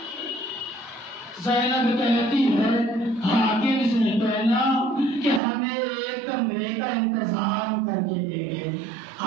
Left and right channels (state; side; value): drops out; left; at 5.4 s